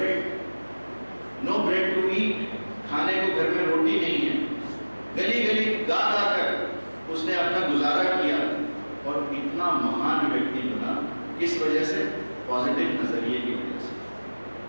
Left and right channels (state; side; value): inverted; both; correlation -1.00